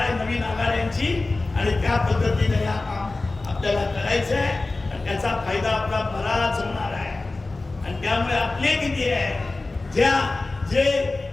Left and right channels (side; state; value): right; quieter; 3.3 dB